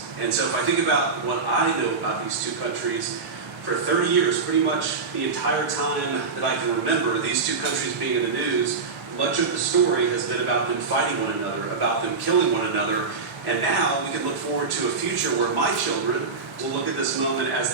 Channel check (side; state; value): left; quieter; 4.6 dB